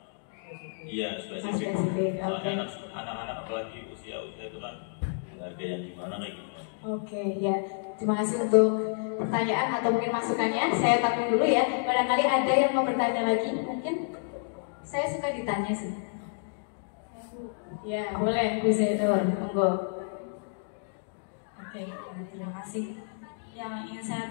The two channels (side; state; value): right; silent; digital silence